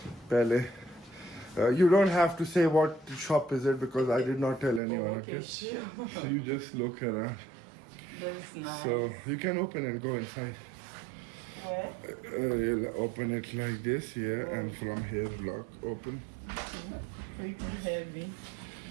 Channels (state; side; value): drops out; left; at 4.8 s